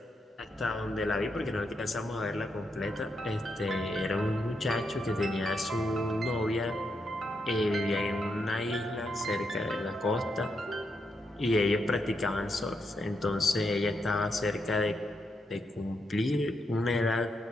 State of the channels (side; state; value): both; normal; correlation 0.82